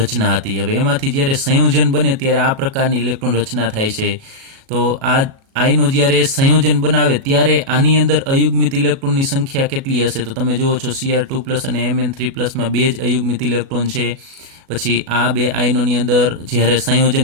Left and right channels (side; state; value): left; late; 37 ms